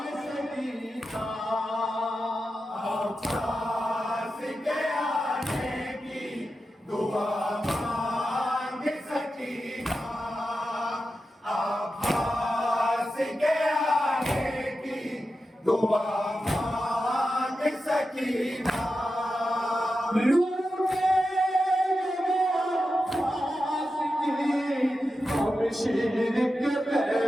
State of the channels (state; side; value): normal; both; correlation 0.91